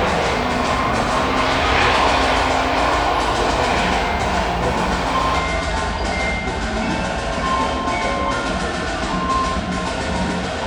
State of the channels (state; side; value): identical; both; correlation 1.00